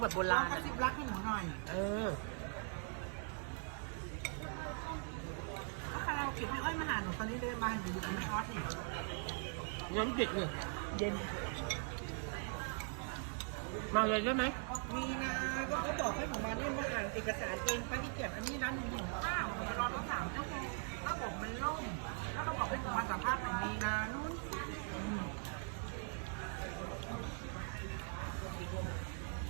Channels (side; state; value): left; silent; 50 dB below the other